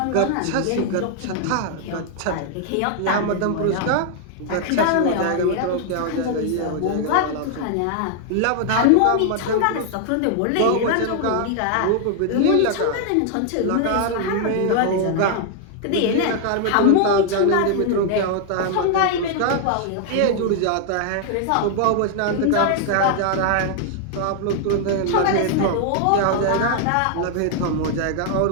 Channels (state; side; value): different; both; correlation 0.00